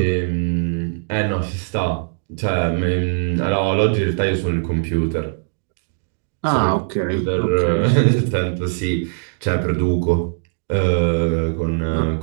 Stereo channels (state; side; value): silent; left; digital silence